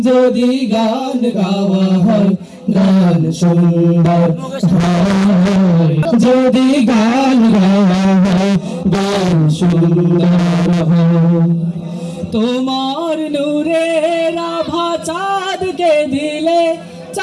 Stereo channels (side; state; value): both; identical; correlation 1.00